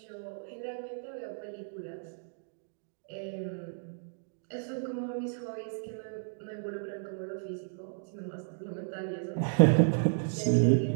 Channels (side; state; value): left; silent; digital silence